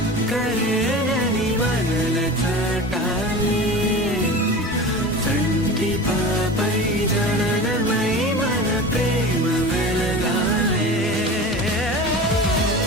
మనల చంటి పాపై జననమై మన ప్రేమ వెలగాలే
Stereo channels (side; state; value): both; normal; correlation 0.33